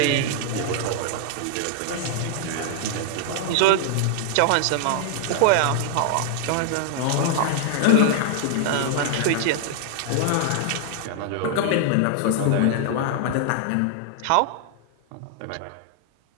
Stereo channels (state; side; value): different; both; correlation 0.00